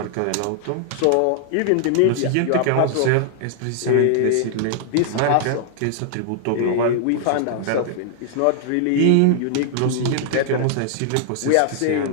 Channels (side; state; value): both; different; correlation -0.01